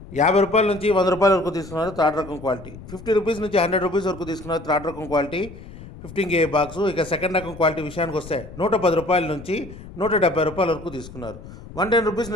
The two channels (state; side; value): noise; left; rumble, 15 dB below the sound